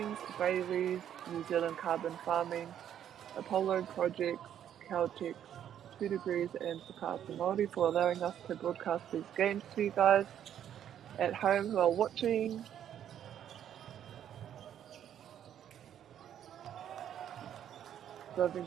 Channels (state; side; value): quieter; left; 10.0 dB